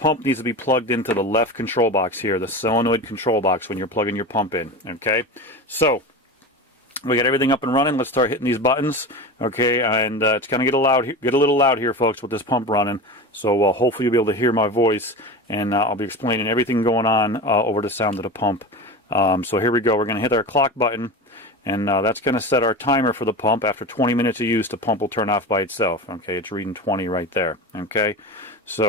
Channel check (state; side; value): normal; both; correlation 0.27